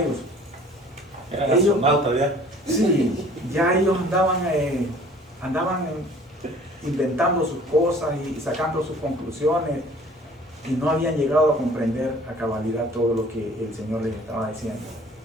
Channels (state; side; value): normal; both; correlation 0.51